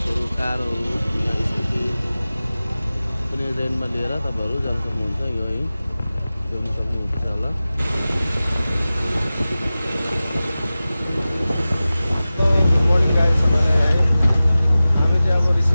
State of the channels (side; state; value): both; inverted; correlation -0.96